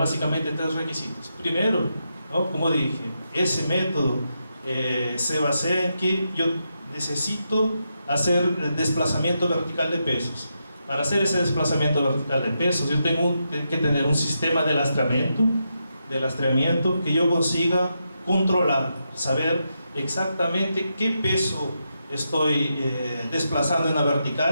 3 requisitos. Primero, ¿no? Como dije, ese método se basa en que yo necesito hacer desplazamiento vertical de pesos. Para hacer ese desplazamiento vertical de pesos, yo tengo que tener un sistema de lastreamiento que yo consiga controlar, saber exactamente qué peso estoy desplazando en la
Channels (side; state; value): both; inverted; correlation -0.84